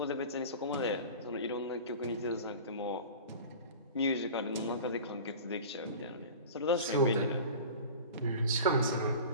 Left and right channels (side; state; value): both; inverted; correlation -0.37